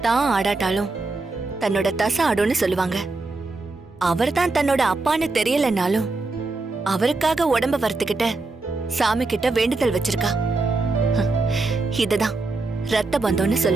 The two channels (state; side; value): quieter; left; 3.4 dB